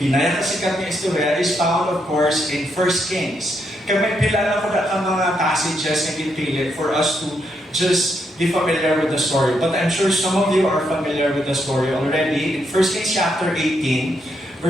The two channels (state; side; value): normal; both; correlation 0.79